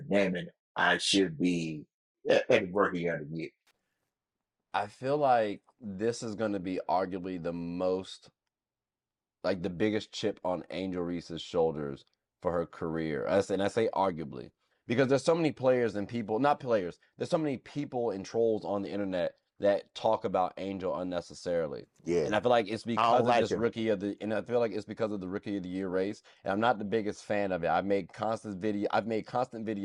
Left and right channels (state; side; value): identical; both; correlation 1.00